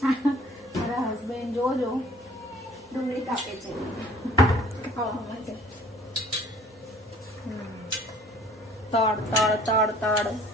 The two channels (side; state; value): both; normal; correlation 0.53